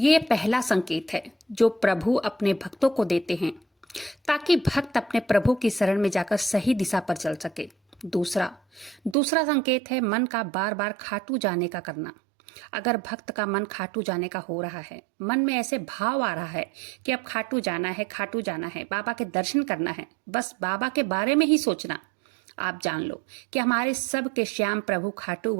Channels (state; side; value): drops out; left; at 9.2 s